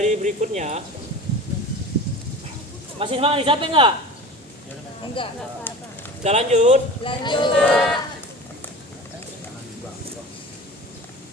berikutnya. Masih semangat nih, capek nggak? Enggak. Kita lanjut. Lanjut.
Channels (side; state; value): both; normal; correlation 0.36